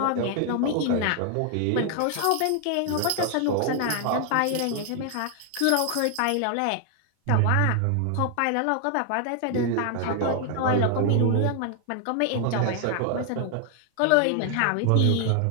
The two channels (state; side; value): different; both; correlation 0.00